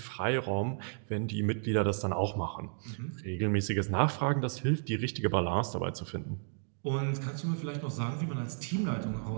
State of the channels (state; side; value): silent; left; digital silence